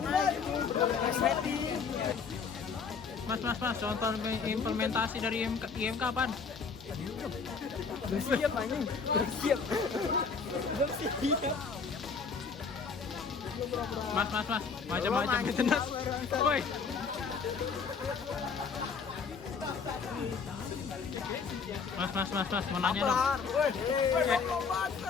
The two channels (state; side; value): quieter; right; 5.4 dB